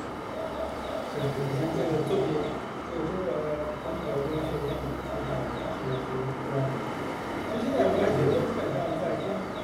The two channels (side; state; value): both; identical; correlation 1.00